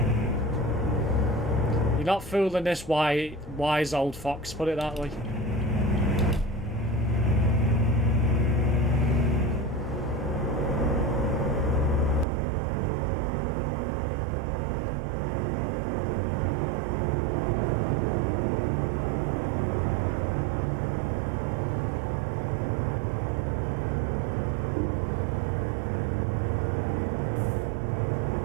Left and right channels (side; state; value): left; drops out; at 12.2 s